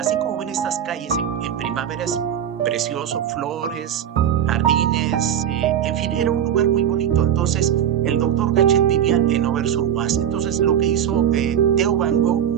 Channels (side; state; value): left; quieter; 9.7 dB